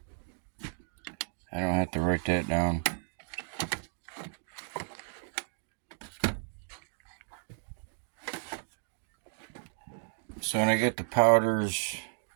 don't have to write that down. So when I get the powders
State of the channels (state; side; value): silent; left; digital silence